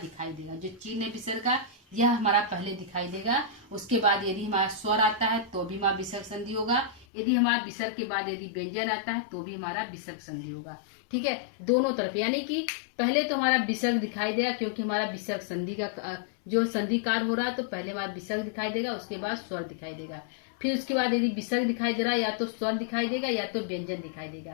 देगा, जो चिन्ह है विसर्ग का यह हमारा पहले दिखाई देगा, उसके बाद यदि हमारा स्वर आता है तो भी हमारा विसर्ग संधि होगा, यदि हमारा विसर्ग के बाद यदि व्यंजन आता है तो भी हमारा विसर्ग संधि होगा। ठीक है, दोनों तरफ, यानी कि पहले तो हमारा विसर्ग दिखाई देगा क्योंकि हमारा विसर्ग संधि का जो संधि कार्य हो रहा है, तो पहले हमारा विसर्ग दिखाई देगा, उसके बाद स्वर दिखाई देगा, फिर उसके बाद यदि विसर्ग दिखाई दे रहा है या तो स्वर दिखाई देगा या तो व्यंजन दिखाई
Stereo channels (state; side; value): drops out; right; at 7.1 s